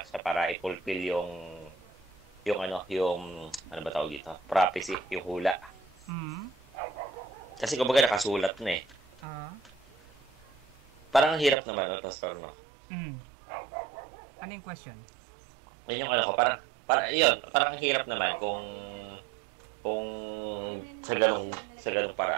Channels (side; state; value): left; drops out; at 11.6 s